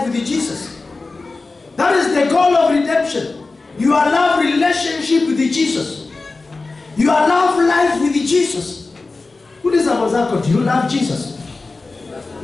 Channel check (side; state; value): right; quieter; 3.7 dB